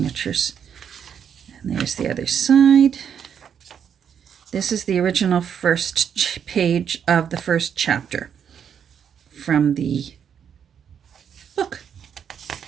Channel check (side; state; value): left; quieter; 8.0 dB